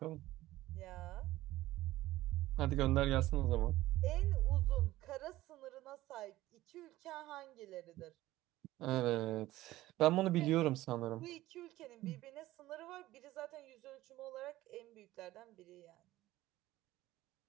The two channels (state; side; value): quieter; left; 16.3 dB